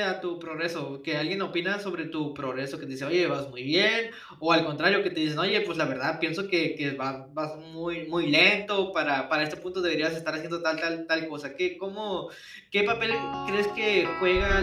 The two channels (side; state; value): both; identical; correlation 1.00